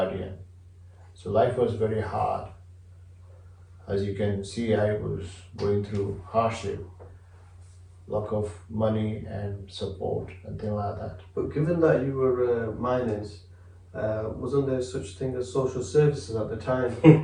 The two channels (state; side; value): identical; both; correlation 1.00